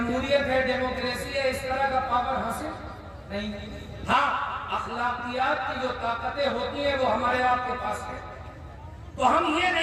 ہے, ڈیموکریسی ہے, اس طرح کا پاور حاصل نہیں. ہاں اخلاقیات کی جو طاقتیں ہوتی ہیں وہ ہمارے آپ کے پاس ہے. تو ہم یہ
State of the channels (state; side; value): identical; both; correlation 1.00